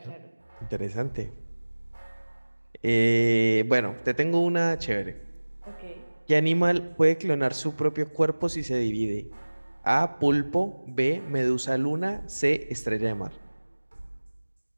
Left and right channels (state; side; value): inverted; both; correlation -1.00